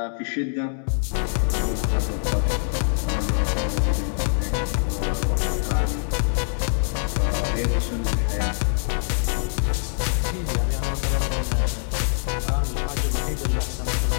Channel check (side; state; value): right; silent; 63 dB below the other